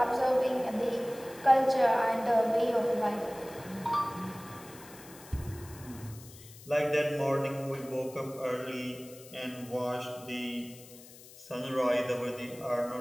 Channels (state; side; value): noise; left; hiss, 19 dB below the sound